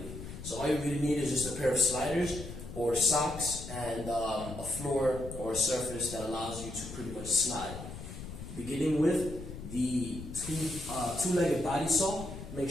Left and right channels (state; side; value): noise; left; rumble, 10 dB below the sound